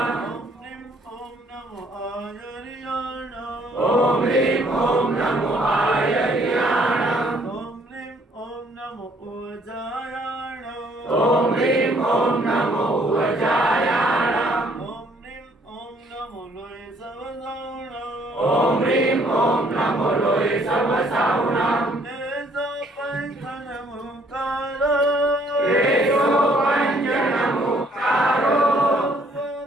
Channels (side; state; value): both; normal; correlation 0.63